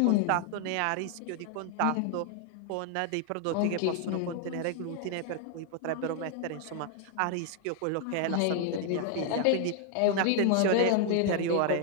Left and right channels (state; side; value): different; both; correlation 0.00